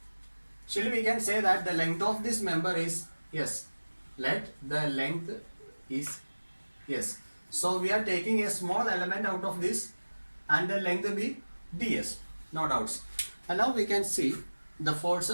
Still, we can say that the length of this member is S. Let the length is S. So we are taking a small element out of this, and the length will be ds, no doubts. And now we can see the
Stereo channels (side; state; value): both; inverted; correlation -1.00